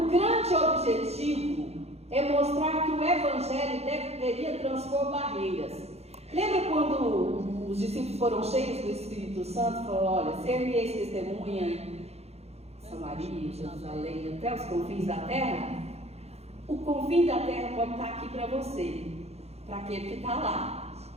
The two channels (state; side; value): late; left; 0.30 ms